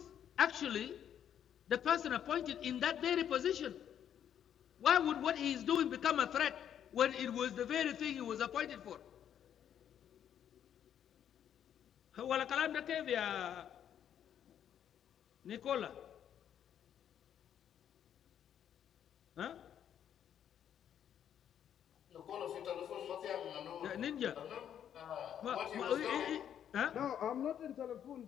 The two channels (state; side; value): quieter; right; 9.5 dB